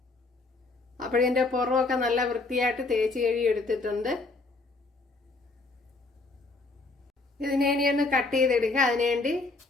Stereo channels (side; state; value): right; quieter; 3.5 dB